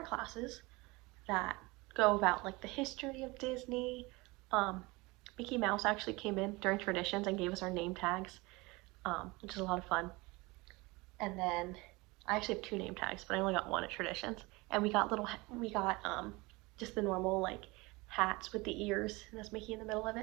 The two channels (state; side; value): quieter; left; 23.8 dB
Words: classes that go about like the history of Disney. Mickey Mouse actually came in during traditions and gave us our name tags, which is a lot of fun. And then I actually have 2 name tags, but I only got 1 at traditions. And we got just the normal like hats with the ears, and that's Mickey in the middle of